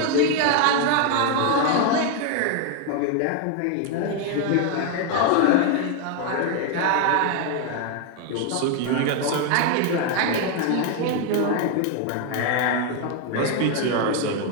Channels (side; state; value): both; different; correlation 0.01